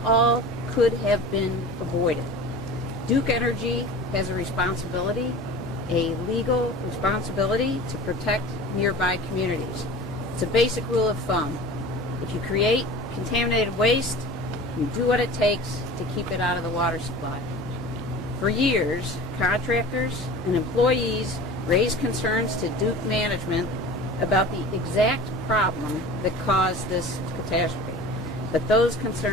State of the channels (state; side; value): normal; both; correlation 0.38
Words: all could have been avoided. Duke Energy has a responsibility, a legal responsibility, to protect nearby communities. It's a basic rule of thumb. If you create contaminated waste, you do what it takes to keep it out of the water supply. For years, contractors and employees raised concerns to Duke management about the exact problem that caused this catastrophe. But those